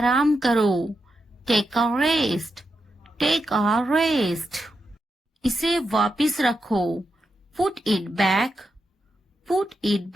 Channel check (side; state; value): both; normal; correlation 0.86